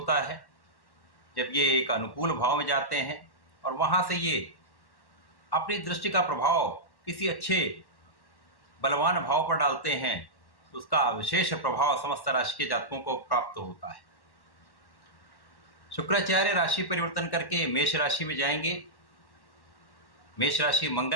है, जब ये एक अनुकूल भाव में जाते हैं और वहाँ से ये अपनी दृष्टि का प्रभाव किसी अच्छे बलवान भाव पर डालते हैं, तो उसका विशेष प्रभाव समस्त राशि के जातकों को प्राप्त होता है। शुक्राचार्य राशि परिवर्तन करके मेष राशि में जाएंगे। मेष राशि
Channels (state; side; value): late; right; 1.1 ms